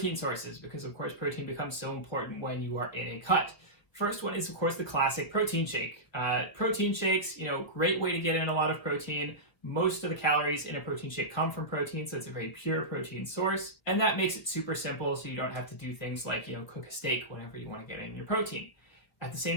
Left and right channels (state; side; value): late; right; 1.6 ms